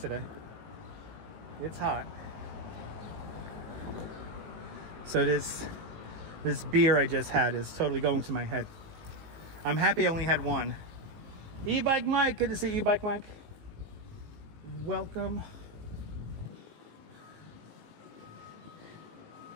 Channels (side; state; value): left; late; 18 ms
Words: It's hot. So this beer I just had is totally going to my head. I'm happy I only had one. E-Bike Mike, good to see E-Bike Mike. Welcome.